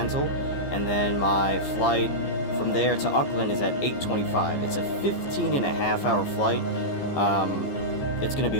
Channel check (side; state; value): right; late; 15 ms